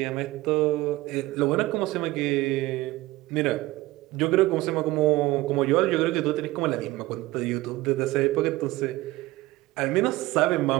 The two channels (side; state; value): left; quieter; 18.9 dB